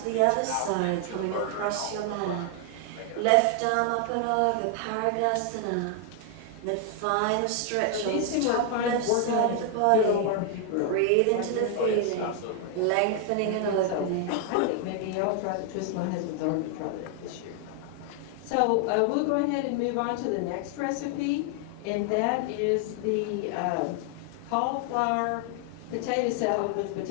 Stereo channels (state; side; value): different; both; correlation 0.00